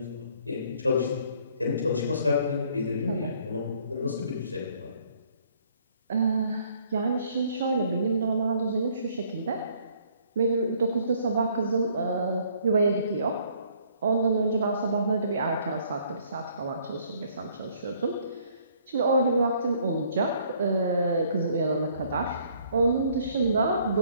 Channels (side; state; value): both; inverted; correlation -0.63